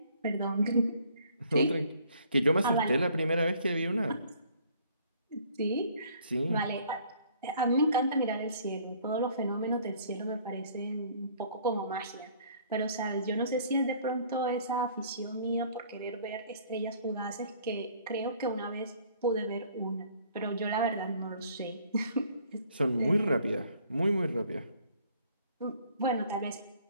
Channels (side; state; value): both; inverted; correlation -0.58